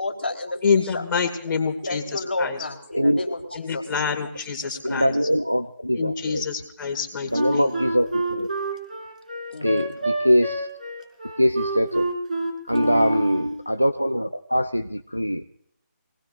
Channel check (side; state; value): both; inverted; correlation -0.87